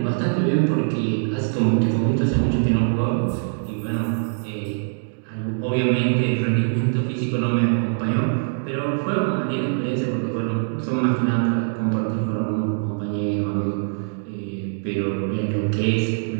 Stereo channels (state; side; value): silent; left; digital silence